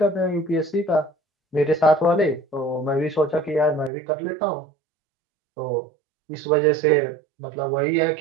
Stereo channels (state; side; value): drops out; left; at 3.9 s